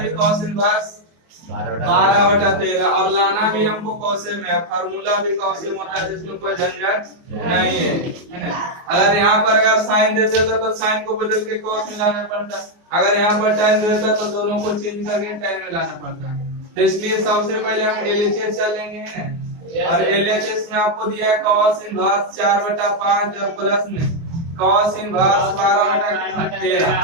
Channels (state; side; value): late; left; 24 ms